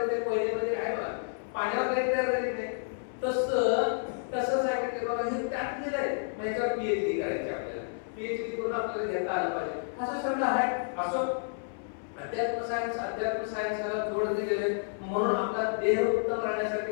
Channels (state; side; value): silent; right; 58 dB below the other